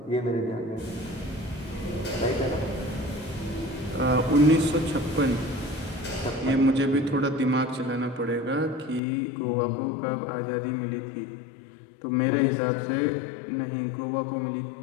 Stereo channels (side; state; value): right; drops out; at 9.0 s